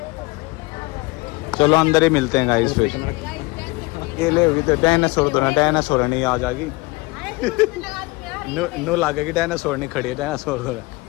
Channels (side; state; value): right; quieter; 24.4 dB